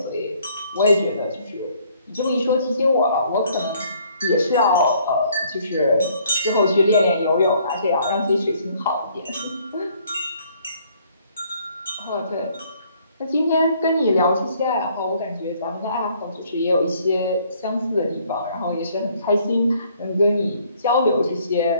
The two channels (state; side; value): inverted; both; correlation -0.63